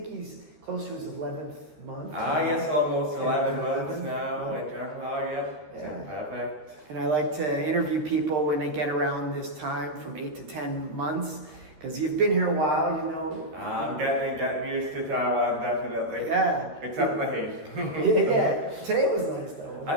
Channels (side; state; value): left; late; 13 ms